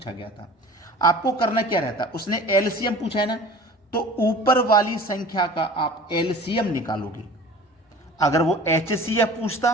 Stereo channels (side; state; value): both; normal; correlation 0.42